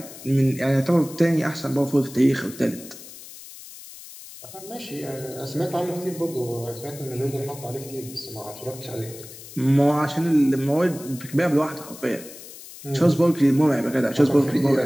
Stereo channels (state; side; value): noise; left; hiss, 16 dB below the sound